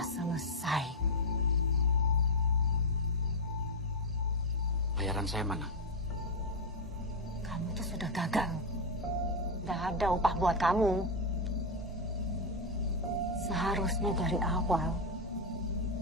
selesai. Bayaran saya mana? Kamu tuh sudah gagal. Tidak ada upah buat kamu. Seharusnya dari awal,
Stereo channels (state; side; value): normal; both; correlation 0.03